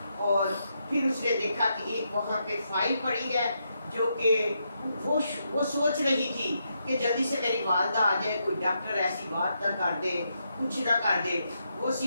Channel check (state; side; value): inverted; both; correlation -0.81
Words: اور پھر اس نے دیکھا کہ ایک وہاں پہ فائل پڑی ہے جو کہ وہ سوچ رہی تھی کہ جلدی سے میری والدہ آ جائے، کوئی ڈاکٹر ایسی بات نہ کر دے، کچھ نہ کر دے، وہ